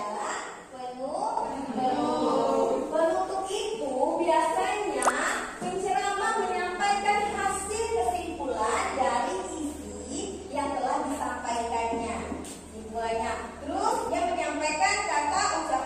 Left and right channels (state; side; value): identical; both; correlation 1.00